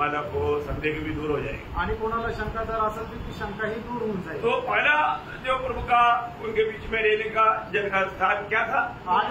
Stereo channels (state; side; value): identical; both; correlation 1.00